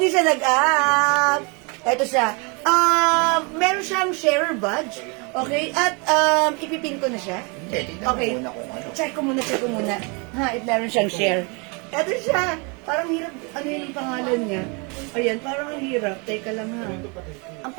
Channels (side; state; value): left; quieter; 32.0 dB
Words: siya nag-up. Ito siya. Meron siyang sharer badge. Okay? At ipipin ko na siya. Hindi, tignan Okay. mo muna kung ano. Check ko muna. Ha, meron siyang share. Ito siya. Parang hirap. Ano yung pangalan niya? Ayan, parang ang hirap. Teka lang ha. Ang